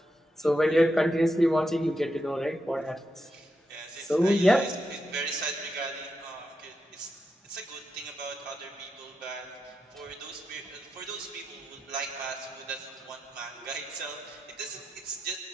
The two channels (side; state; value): both; normal; correlation 0.86